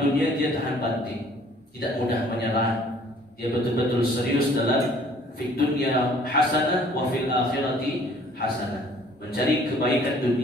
dia tahan banting, tidak mudah menyerah. Dia betul-betul serius dalam fid dunya hasanah wa fil akhirati hasanah, mencari kebaikan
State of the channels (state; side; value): normal; both; correlation 0.56